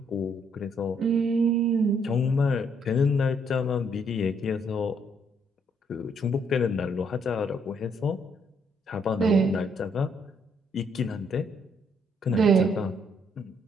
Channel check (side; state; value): both; normal; correlation 0.70